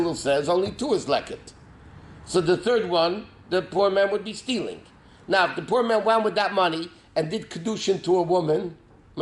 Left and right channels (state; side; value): identical; both; correlation 1.00